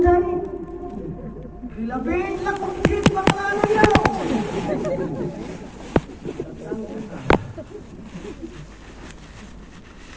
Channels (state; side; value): identical; both; correlation 1.00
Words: kilabit lang kukit bakalan yaw